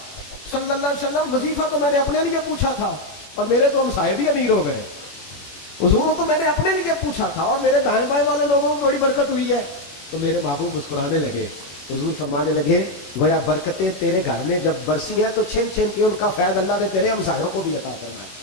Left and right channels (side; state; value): right; late; 21 ms